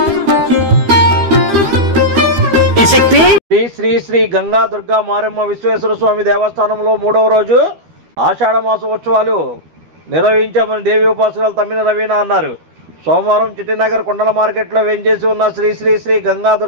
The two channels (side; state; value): left; late; 12 ms